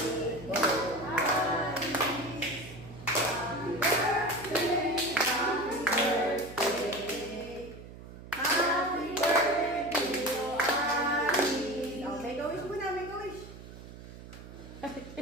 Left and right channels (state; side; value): noise; right; hum, 15 dB below the sound